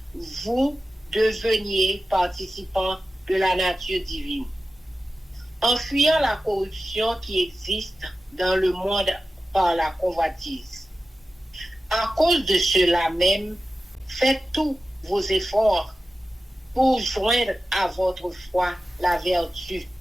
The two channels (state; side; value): normal; both; correlation 0.93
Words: vous deveniez participants de la nature divine, en fuyant la corruption qui existe dans le monde par la convoitise. À cause de cela même, faites tous vos efforts pour joindre à votre foi la vertu,